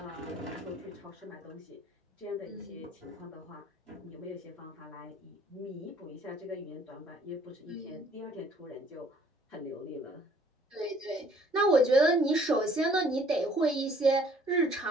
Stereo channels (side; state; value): both; normal; correlation 0.59